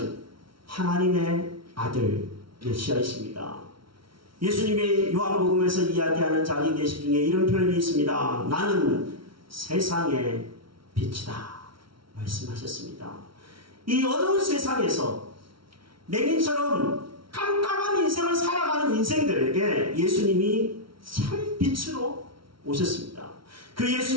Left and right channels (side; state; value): left; late; 0.74 ms